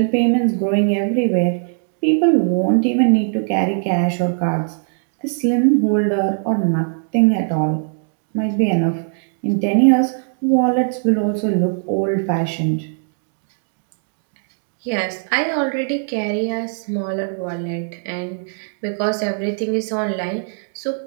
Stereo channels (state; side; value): silent; left; 66 dB below the other